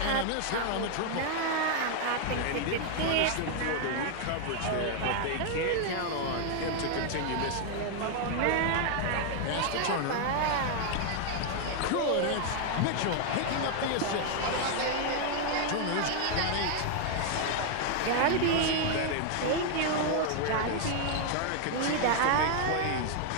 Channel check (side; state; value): both; different; correlation 0.00